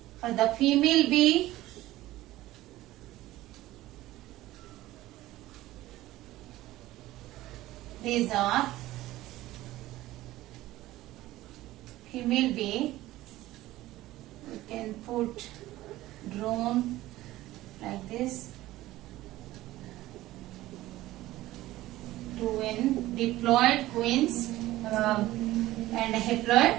for the female bee, these are female bee. We can put drone like this. Twin diploid queens and haploid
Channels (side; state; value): left; quieter; 16.4 dB